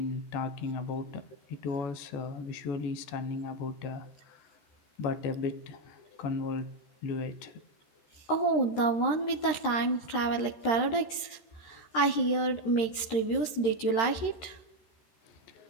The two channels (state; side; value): late; right; 13 ms